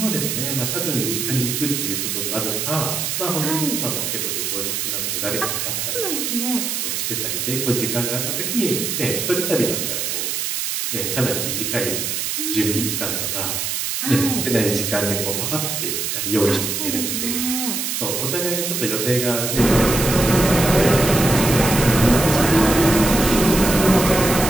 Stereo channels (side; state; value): right; noise; hiss, 2 dB below the sound